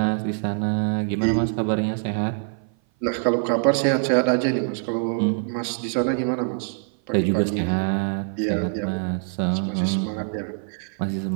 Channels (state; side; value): silent; left; 57 dB below the other